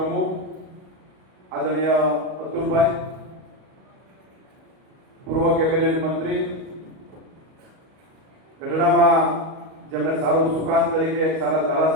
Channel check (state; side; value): late; left; 38 ms